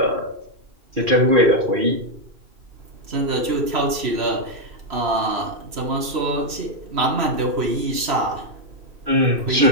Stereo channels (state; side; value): late; left; 3.1 ms